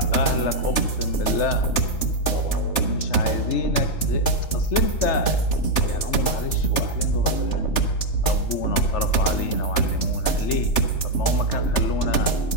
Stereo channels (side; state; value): right; late; 3.4 ms